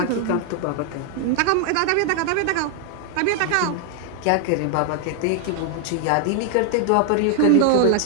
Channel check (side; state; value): both; different; correlation 0.00